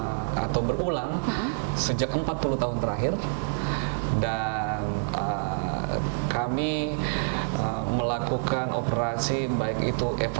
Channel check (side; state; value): left; silent; 60 dB below the other